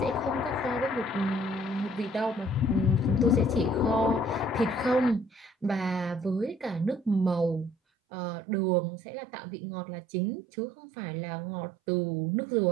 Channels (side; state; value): left; drops out; at 7.8 s